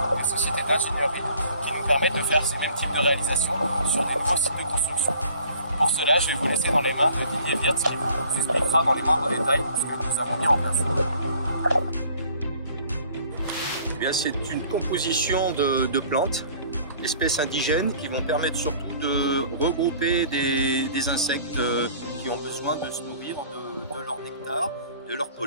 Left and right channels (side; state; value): both; inverted; correlation -0.54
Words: des sociétés d'ingénierie qui nous permettent de faire ce même type de réalisation sur de nouveaux sites de construction. Pour cela, je vais vous laisser dans les mains de Didier Wirtz qui vous expliquera dans les moindres détails ce que nous avons mis en place. Eh bien, c'est une composition de plantes, d'espèces indigènes qui vont permettre surtout de regrouper des insectes qui ont besoin de se nourrir de leur nectar, de leur